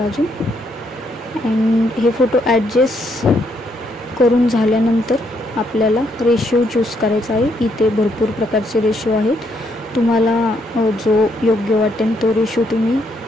अँड हे फोटो ॲडजस्ट करून झाल्यानंतर आपल्याला रेशो चूज करायचा आहे। इथे भरपूर प्रकारचे रेशो आहेत, तुम्हाला जो योग्य वाटेल तो रेशो तुम्ही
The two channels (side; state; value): both; normal; correlation 0.74